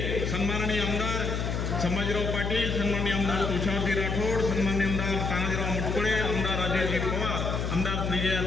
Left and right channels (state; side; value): noise; left; hum, 1 dB below the sound